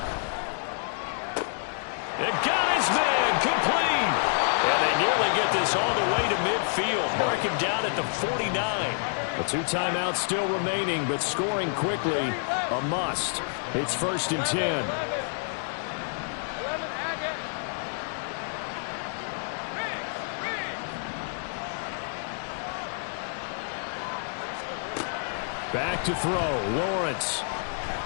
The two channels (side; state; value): right; silent; digital silence